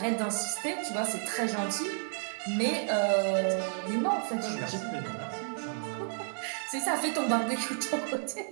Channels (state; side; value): silent; left; digital silence